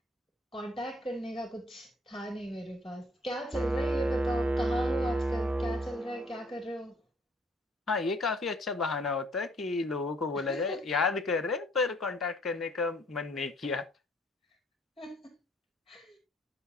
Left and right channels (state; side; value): normal; both; correlation 0.63